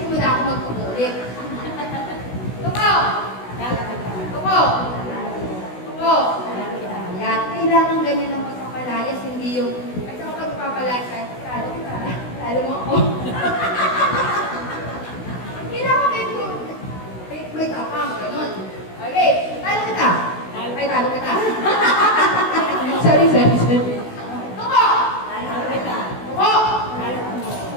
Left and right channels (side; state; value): right; late; 16 ms